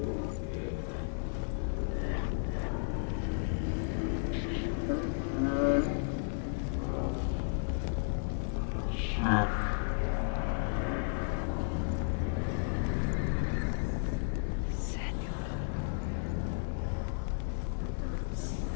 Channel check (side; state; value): right; silent; 55 dB below the other